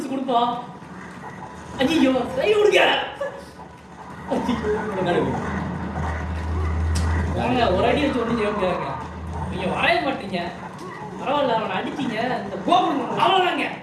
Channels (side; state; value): both; identical; correlation 1.00